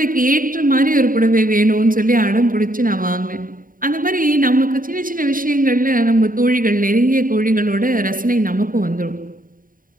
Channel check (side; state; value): left; late; 0.40 ms